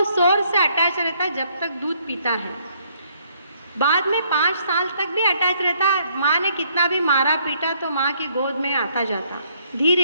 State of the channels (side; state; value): both; inverted; correlation -0.68